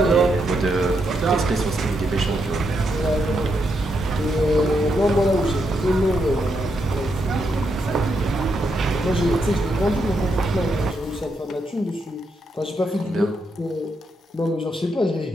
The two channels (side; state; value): both; normal; correlation 0.80